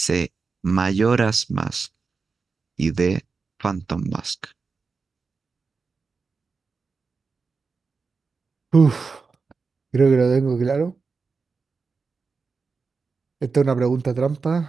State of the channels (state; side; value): quieter; left; 4.7 dB